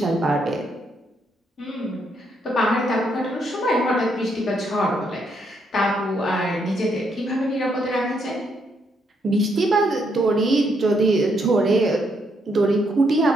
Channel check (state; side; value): normal; both; correlation 0.75